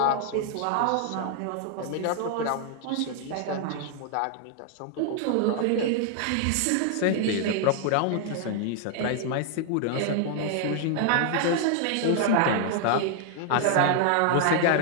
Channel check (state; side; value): different; both; correlation 0.00